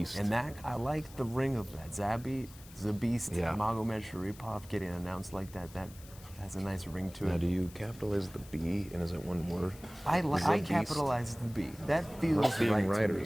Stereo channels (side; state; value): left; noise; hiss, 20 dB below the sound